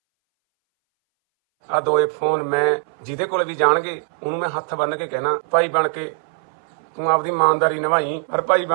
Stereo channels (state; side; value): silent; left; 62 dB below the other